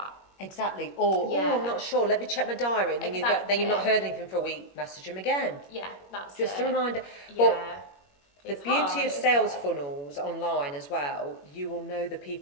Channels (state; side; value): late; right; 21 ms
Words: Exactly. Or I'm not sure. Let me check my diary. And then you've not heard anything for a week. Message them again. Yeah, that's just it. a reminder. Yeah. But the beauty of sales funnels online as well, you will know the